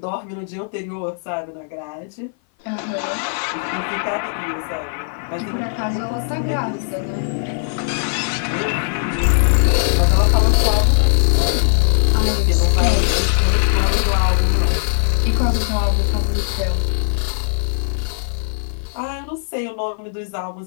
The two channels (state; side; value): silent; right; 58 dB below the other